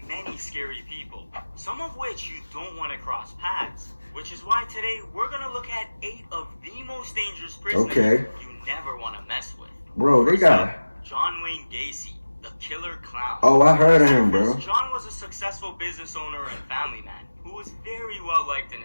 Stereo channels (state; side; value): inverted; both; correlation -1.00